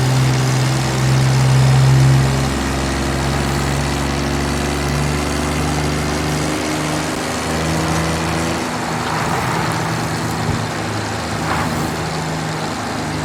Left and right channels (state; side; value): identical; both; correlation 1.00